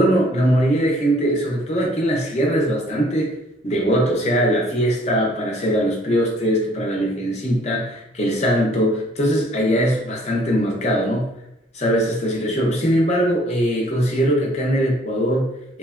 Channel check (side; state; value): both; normal; correlation 0.59